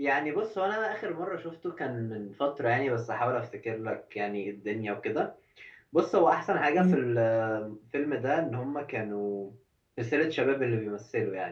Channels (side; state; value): both; identical; correlation 1.00